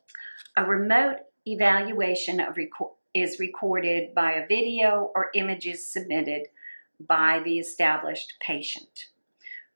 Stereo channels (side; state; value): both; inverted; correlation -1.00